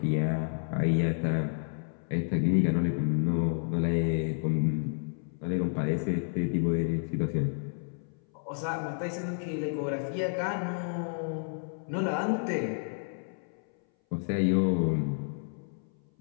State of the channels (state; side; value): silent; right; 58 dB below the other